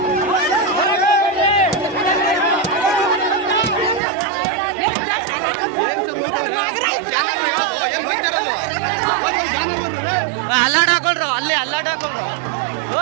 ಅಲ್ಲಾಡ್ ಹಾಕೊಳ್ರು, ಅಲ್ಲಿ ಅಲ್ಲಾಡ್ ಹಾಕೊಳ್ರು.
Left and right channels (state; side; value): drops out; left; at 4.0 s